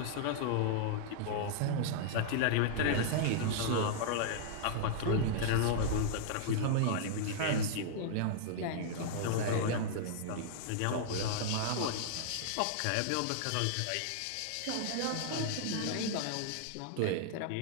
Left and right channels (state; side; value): different; both; correlation -0.01